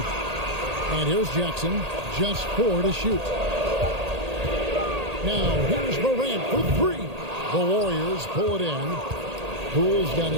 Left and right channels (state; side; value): late; left; 1.8 ms